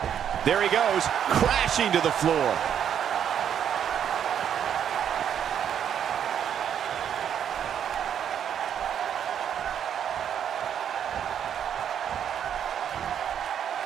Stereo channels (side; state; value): left; quieter; 8.9 dB